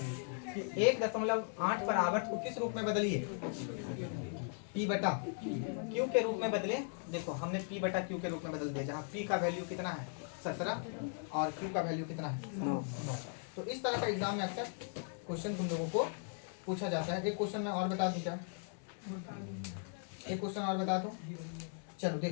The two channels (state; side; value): silent; right; 52 dB below the other